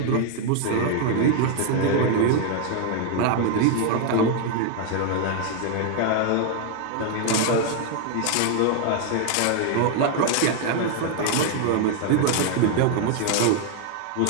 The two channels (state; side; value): different; both; correlation 0.00